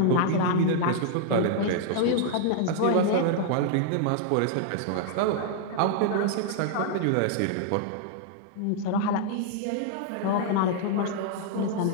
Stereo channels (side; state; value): both; different; correlation 0.00